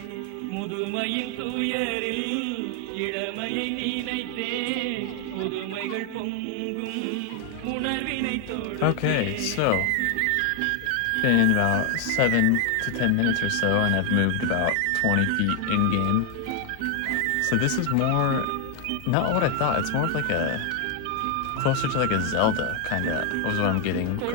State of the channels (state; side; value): different; both; correlation 0.00